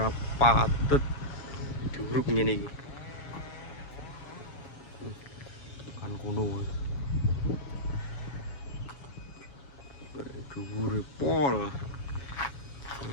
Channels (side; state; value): right; late; 7.2 ms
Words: diuruk ngene iki. Kan kuno. Dhuwure pol.